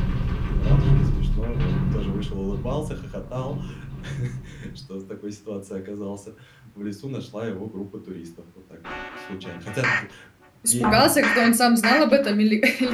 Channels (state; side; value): identical; both; correlation 1.00